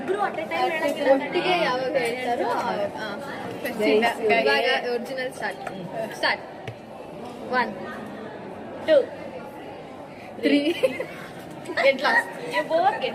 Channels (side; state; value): both; identical; correlation 1.00